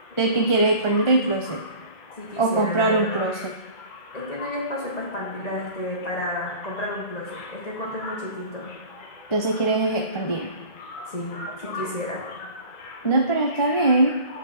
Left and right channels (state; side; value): late; right; 2.0 ms